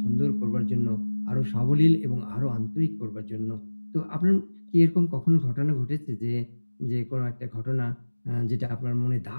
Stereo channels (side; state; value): both; inverted; correlation -1.00